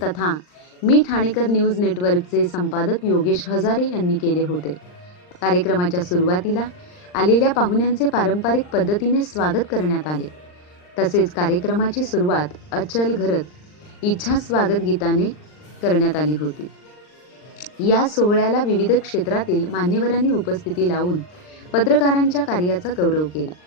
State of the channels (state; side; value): late; right; 39 ms